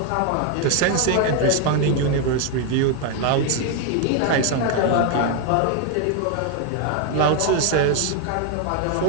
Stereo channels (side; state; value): both; different; correlation 0.00